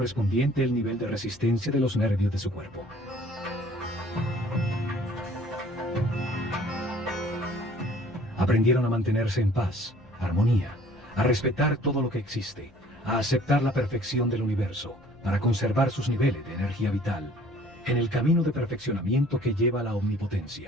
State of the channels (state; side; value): noise; left; hum, 27 dB below the sound